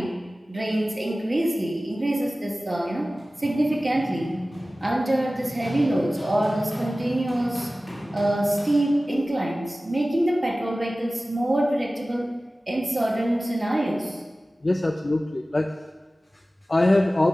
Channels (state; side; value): normal; both; correlation 0.96